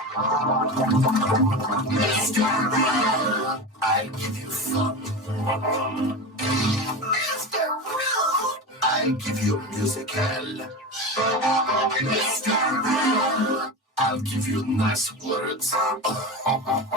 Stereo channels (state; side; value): normal; both; correlation 0.24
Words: Mr. Rude. I'll give you fun. Mr. Rude. I'll give you musical. Mr. Rude. I'll give you nice words.